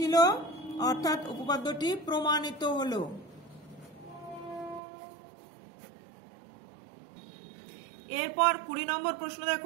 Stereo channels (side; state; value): left; drops out; at 4.8 s